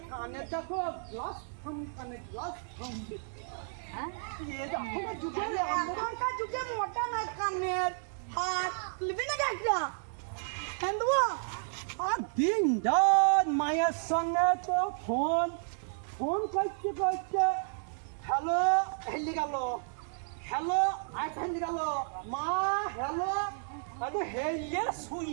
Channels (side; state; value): left; silent; 56 dB below the other